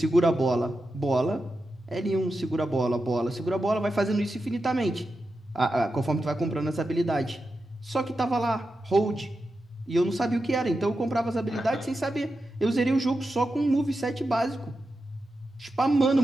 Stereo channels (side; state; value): both; normal; correlation 0.89